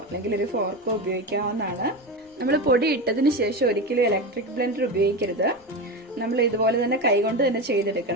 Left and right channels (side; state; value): both; normal; correlation 0.20